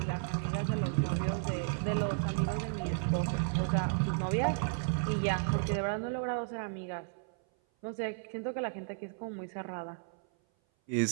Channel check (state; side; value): silent; left; 55 dB below the other